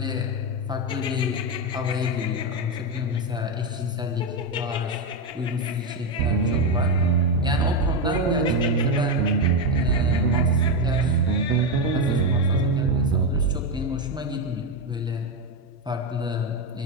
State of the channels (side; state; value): both; normal; correlation 0.09